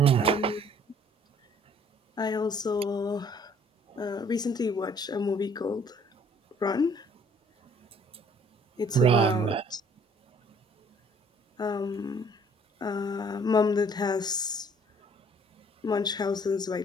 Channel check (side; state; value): both; normal; correlation 0.58